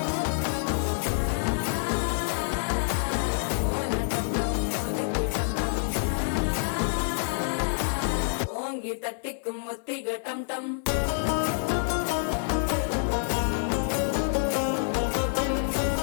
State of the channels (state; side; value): silent; right; 57 dB below the other